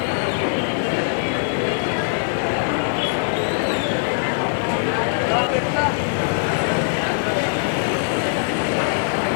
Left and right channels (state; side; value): silent; right; digital silence